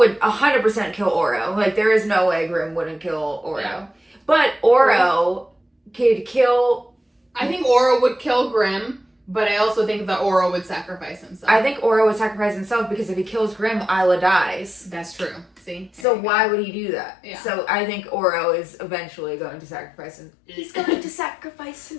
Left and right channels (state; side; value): drops out; right; at 16.1 s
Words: 100% kill Oro. Like, there is no way Grimm wouldn't kill Oro. Yeah. But Oro could kill... I think Oro would kill Grimm, but I also think that Oro would sacrifice himself. I think Oro would sacrifice himself because if he kills Grimm, Isla dies. That's true. See? So why would he do that? Yeah. So I think Oro is eventually going to sacrifice him. He's going to sacrifice